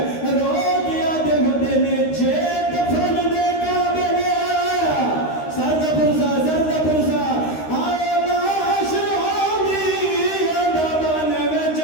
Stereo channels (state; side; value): late; right; 13 ms